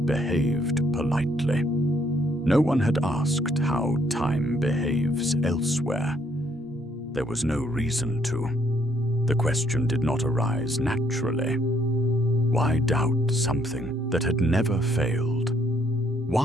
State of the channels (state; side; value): normal; both; correlation 0.69